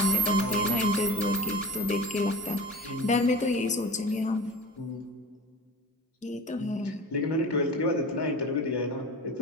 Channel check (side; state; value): both; normal; correlation 0.35